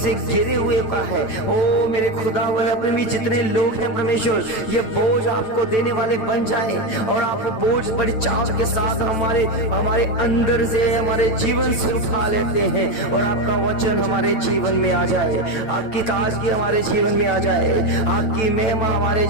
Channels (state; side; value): late; right; 9.1 ms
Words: घिरे हुए का है। ओ मेरे खुदा अपने भी जितने लोग हैं परमेश्वर, ये बोझ आपको देने वाले बन जाए और आप बोझ बड़ी चाव के साथ हमारे अंदर से, हमारे जीवन से उठा लेते हैं और आपका वचन हमारे जीवन में आ जाए, आपकी ताजगी हमारे जीवन में आ जाए, आपकी महिमा हमारे